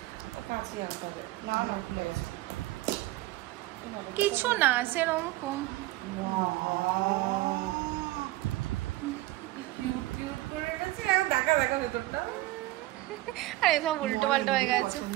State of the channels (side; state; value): left; quieter; 17.8 dB